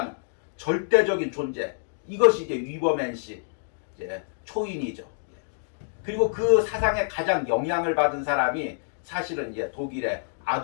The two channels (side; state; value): right; silent; digital silence